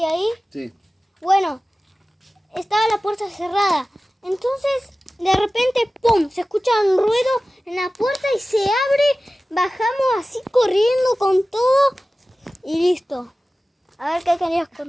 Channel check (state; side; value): normal; both; correlation 0.96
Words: ahí? Sí. Bueno, estaba la puerta cerrada. Entonces, de repente, ¡pum! Se escucha un ruido en la puerta y se abre. Bajamos así corriendo con todo y listo. A ver qué querías